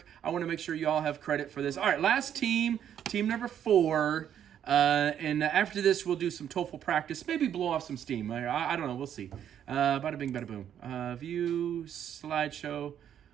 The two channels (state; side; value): quieter; left; 9.6 dB